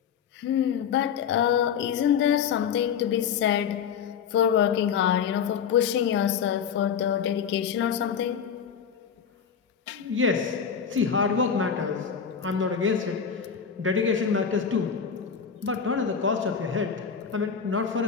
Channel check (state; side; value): quieter; right; 7.2 dB